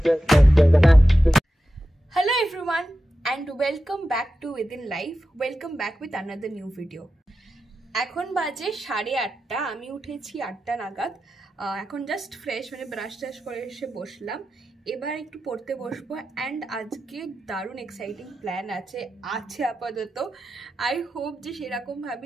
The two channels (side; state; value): both; normal; correlation 0.91